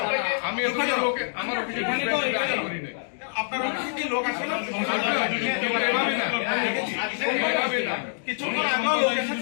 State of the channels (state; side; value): silent; right; digital silence